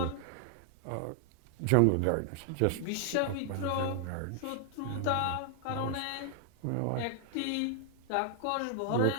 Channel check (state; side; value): different; both; correlation 0.00